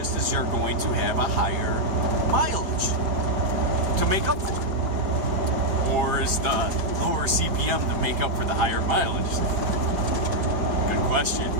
is you're going to have a higher mileage to make up for it. Or is the lower CPM to make up for the higher mileage? Good question.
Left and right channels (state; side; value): late; left; 5.2 ms